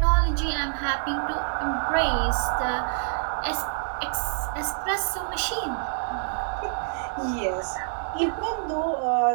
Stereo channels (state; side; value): silent; left; digital silence